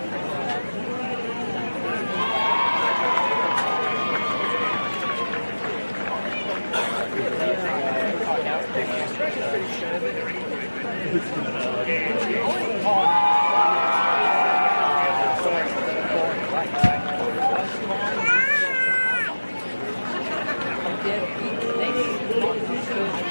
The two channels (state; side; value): inverted; both; correlation -1.00